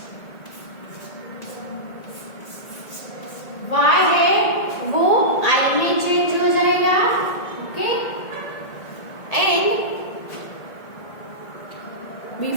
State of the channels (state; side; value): late; right; 1.8 ms